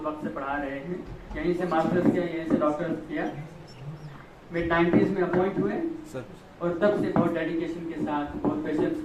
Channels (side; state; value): both; identical; correlation 1.00